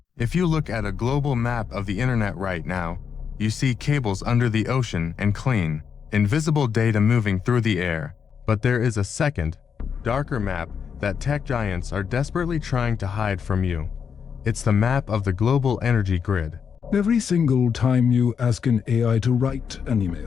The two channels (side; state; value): right; quieter; 6.8 dB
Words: If you look at a global map of the internet right now, you see cables under the ocean and clean, invisible data moving through the air. But there is a second, darker map that tech giants are desperately trying to hide from you. It's the map of the global energy grid. Every single time you ask an AI to write an